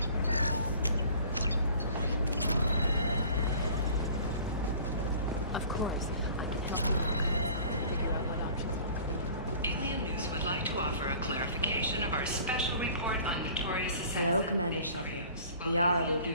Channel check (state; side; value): inverted; both; correlation -0.48